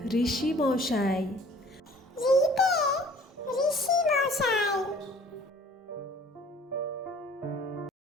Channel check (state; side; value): normal; both; correlation 0.52